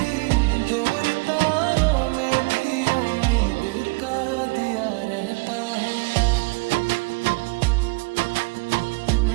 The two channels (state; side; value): quieter; left; 28.1 dB